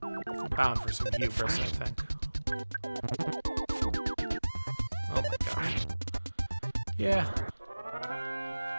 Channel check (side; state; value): both; inverted; correlation -1.00